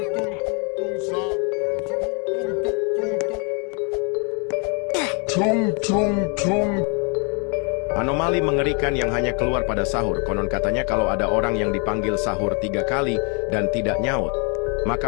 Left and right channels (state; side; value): quieter; right; 35.6 dB